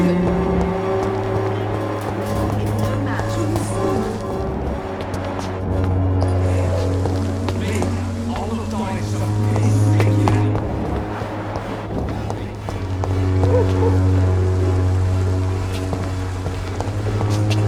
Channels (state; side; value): identical; both; correlation 1.00